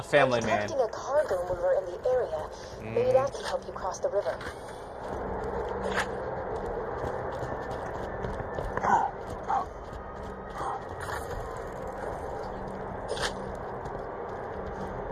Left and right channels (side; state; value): both; identical; correlation 1.00